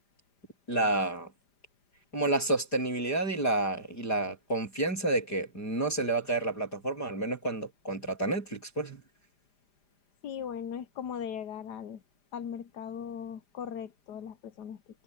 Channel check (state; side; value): late; right; 5.0 ms